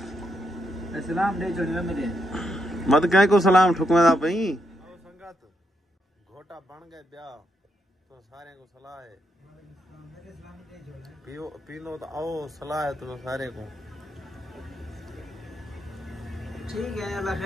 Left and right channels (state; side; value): normal; both; correlation 0.80